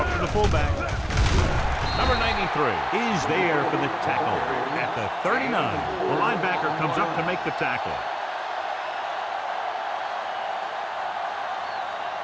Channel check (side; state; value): both; identical; correlation 1.00